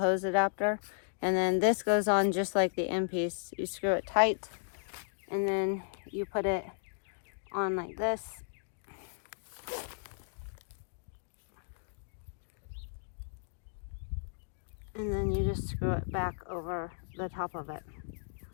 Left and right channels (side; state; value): right; silent; digital silence